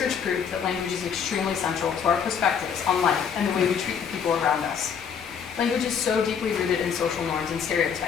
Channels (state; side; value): quieter; right; 7.1 dB